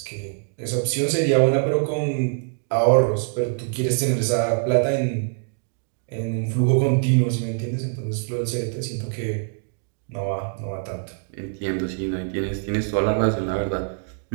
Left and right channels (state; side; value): silent; left; digital silence